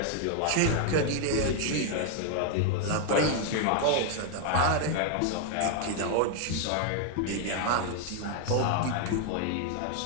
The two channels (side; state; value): both; different; correlation 0.00